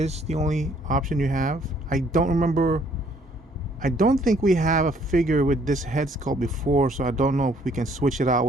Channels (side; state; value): both; normal; correlation 0.63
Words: the only option you have. I don't think we have a figure with this head sculpt before, so I don't know if we can switch it out